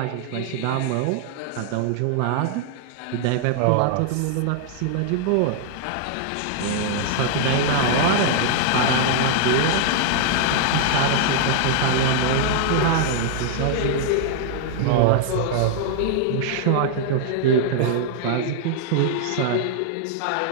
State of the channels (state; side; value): different; both; correlation 0.00